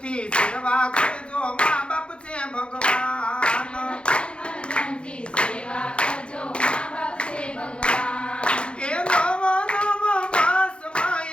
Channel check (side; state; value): right; late; 0.057 ms